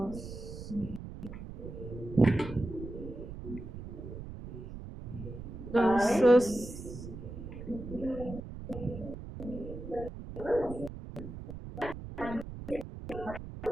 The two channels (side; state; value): right; noise; rumble, 10 dB below the sound